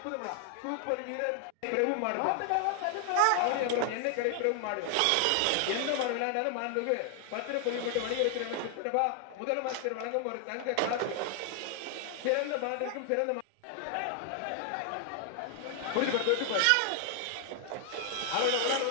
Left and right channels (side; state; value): both; different; correlation 0.00